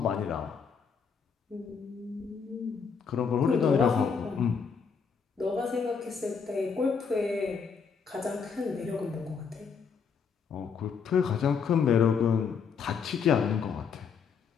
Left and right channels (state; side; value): quieter; right; 6.1 dB